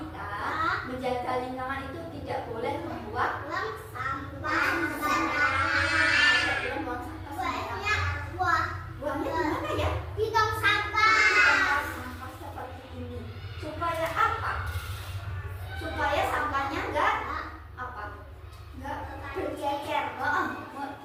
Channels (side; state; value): both; identical; correlation 1.00